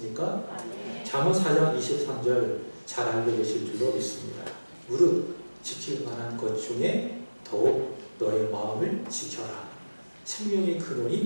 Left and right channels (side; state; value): both; inverted; correlation -1.00